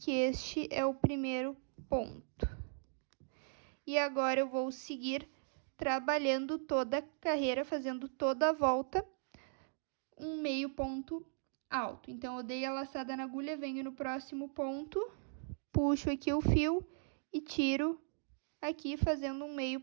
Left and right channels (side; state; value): left; silent; digital silence